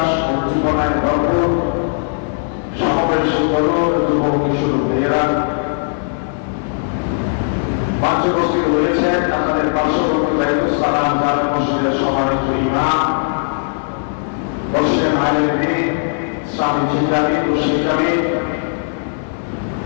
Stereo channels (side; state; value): right; silent; 68 dB below the other